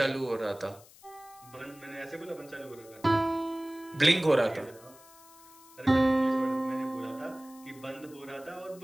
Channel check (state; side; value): noise; left; hiss, 23 dB below the sound